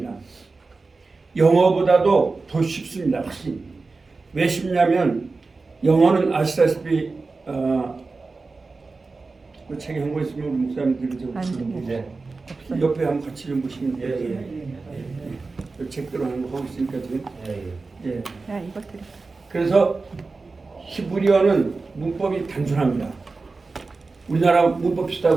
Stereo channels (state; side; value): quieter; left; 3.9 dB